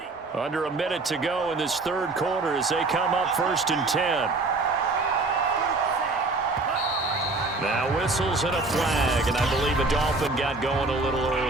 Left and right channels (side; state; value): left; quieter; 3.3 dB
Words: Under a minute to go in this 3rd quarter as they come up 1st and 10. Now whistles and a flag, and I believe a Dolphin got going a little early.